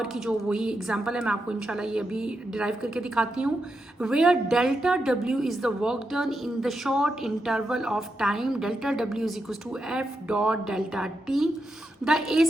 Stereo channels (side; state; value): both; normal; correlation 0.85